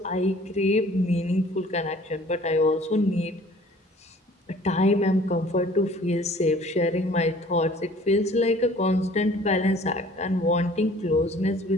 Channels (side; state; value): both; normal; correlation 0.52